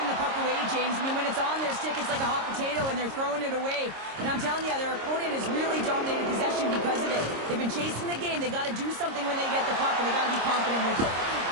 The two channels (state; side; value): late; left; 26 ms